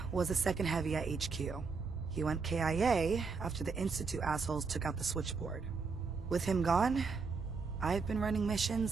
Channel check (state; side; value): quieter; left; 4.8 dB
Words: was the second heavy at HQ. He went KIA after the Institute assholes took out the switchboard. With him gone, I've been running